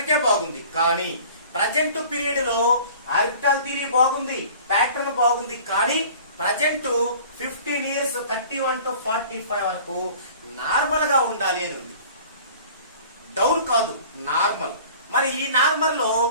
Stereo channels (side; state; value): both; inverted; correlation -0.47